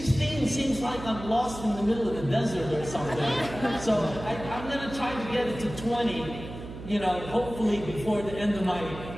seems like I'm lost in the middle of the desert or something. So I'm going to try to get it to 20, you know, hopefully before the end of my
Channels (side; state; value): right; noise; hum, 12 dB below the sound